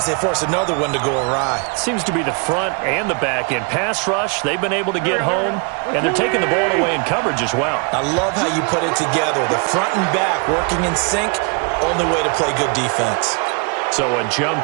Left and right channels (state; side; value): quieter; left; 35.0 dB